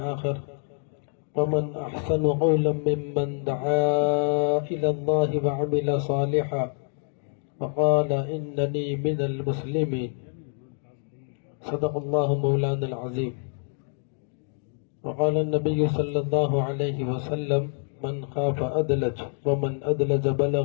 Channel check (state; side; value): silent; right; 58 dB below the other